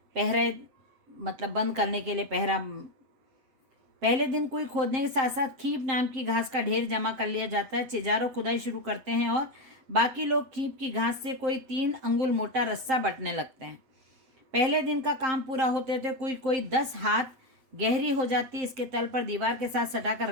पहरा मतलब बंद करने के लिए पहरा। पहले दिन कुई खोदने के साथ साथ खीप नाम की घास का ढेर जमा कर लिया जाता है। चिजारो खुदाई शुरू करते हैं और बाकी लोग खीप की घास से कोई 3 अंगुल मोटा रस्सा बटने लगते हैं। पहले दिन का काम पूरा होते होते कोई 10 हाथ गहरी हो जाती है। इसके तल पर दीवार के साथ सटाकर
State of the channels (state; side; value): late; left; 7.6 ms